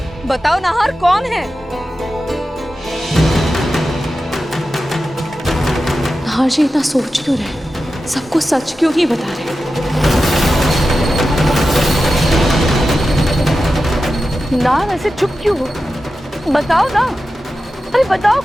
बताओ नाहर, कौन है? हाँ जी, इतना सोच क्यों रहे? सबको सच क्यों नहीं बता रहे? ना ऐसे चुप क्यों हो? बताओ ना। अरे बताओ,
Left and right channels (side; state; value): both; normal; correlation 0.92